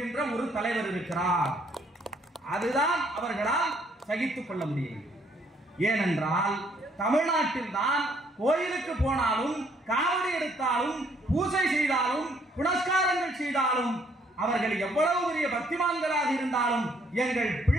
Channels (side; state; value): both; normal; correlation 0.67